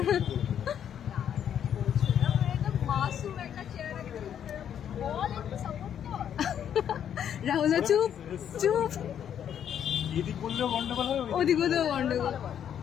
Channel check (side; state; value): right; quieter; 9.2 dB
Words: একদম মাসুম একটা চেহারা, বল একটু সাপোর্ট কর। রাহুল চুপ চুপ, এদিক বললেও গন্ডগোল হবে, ওদিকে তো গন্ডগোল।